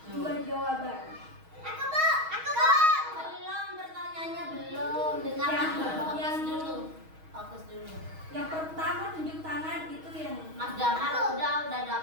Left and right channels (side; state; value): left; late; 6.3 ms